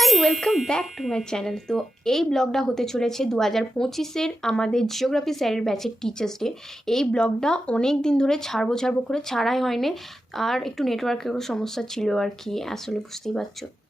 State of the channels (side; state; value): both; normal; correlation 0.91